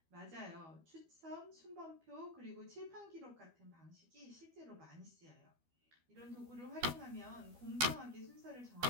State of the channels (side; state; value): left; late; 12 ms